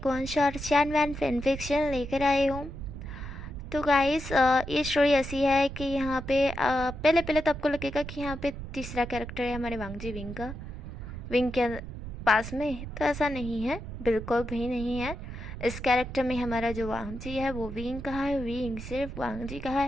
वन शॉट चैन फैन फिक्शन लेकर आई हूँ। तो गाइस, ये स्टोरी ऐसी है कि यहाँ पे पहले पहले तो आपको लगेगा कि यहाँ पे तीसरा कैरेक्टर है हमारे वांगजी विंग का, विंग के पास में। तो ऐसा नहीं है, बिल्कुल भी नहीं है। इस कैरेक्टर में हमारा जो वांगजी है वो विंग का है, विंग सिर्फ वांगजी का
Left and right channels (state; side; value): noise; right; rumble, 9 dB below the sound